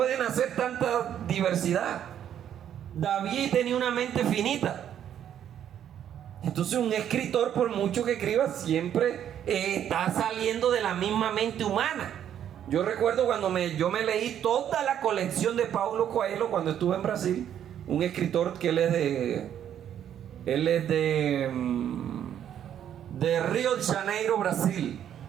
hacer tanta diversidad. David tenía una mente finita. Entonces un escritor, por mucho que escriba, siempre está saliendo de la misma mente humana. Yo recuerdo cuando yo me leí toda la colección de Paulo Coelho cuando estuve en Brasil. Un escritor que él es de Río de Janeiro, Brasil.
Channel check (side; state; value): left; quieter; 9.9 dB